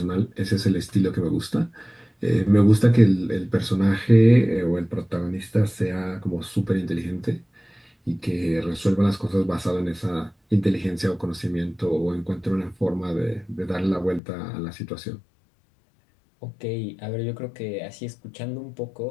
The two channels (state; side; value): drops out; right; at 14.2 s